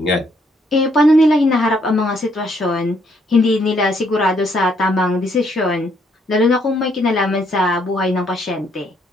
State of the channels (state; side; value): normal; both; correlation 0.71